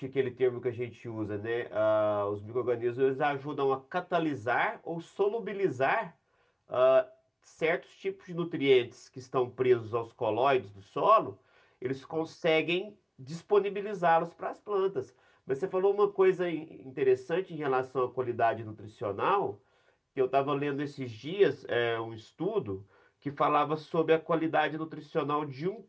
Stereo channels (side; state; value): both; identical; correlation 1.00